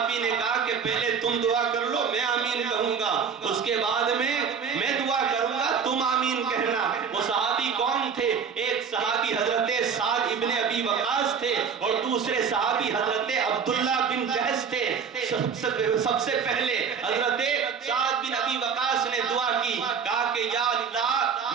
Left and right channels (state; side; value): quieter; left; 6.5 dB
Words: نے کہا کہ پہلے تم دعا کر لو، میں آمین کہوں گا، اس کے بعد میں دعا کروں گا، تم آمین کہنا۔ وہ صحابی کون تھے؟ ایک صحابی حضرت سعد ابن ابی وقاص تھے اور دوسرے صحابی حضرت عبداللہ بن جہش تھے۔ سب سے پہلے حضرت سعد بن ابی وقاص نے دعا کی، کہا کہ یا اللہ